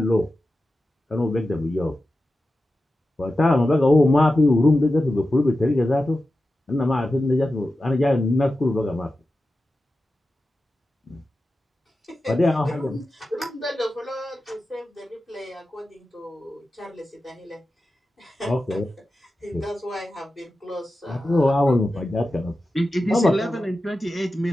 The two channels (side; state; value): both; normal; correlation 0.92